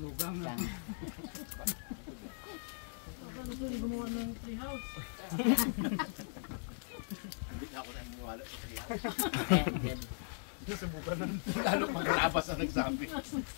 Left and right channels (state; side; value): silent; right; digital silence